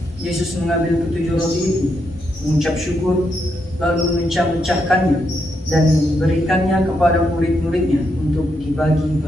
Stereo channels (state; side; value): normal; both; correlation 0.80